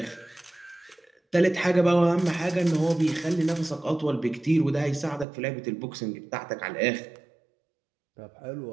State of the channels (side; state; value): left; drops out; at 5.2 s